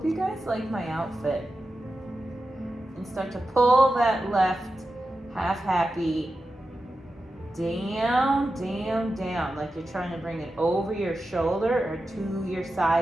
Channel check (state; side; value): normal; both; correlation 0.91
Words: you guys like my outfit. And start to pull that left half happy down, down, down, like you're trying to bring it over your shoulder or to your